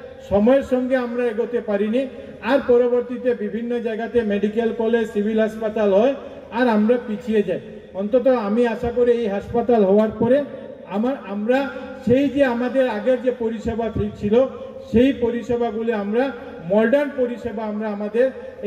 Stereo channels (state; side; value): identical; both; correlation 1.00